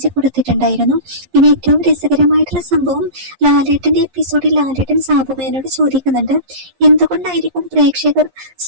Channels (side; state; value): left; late; 11 ms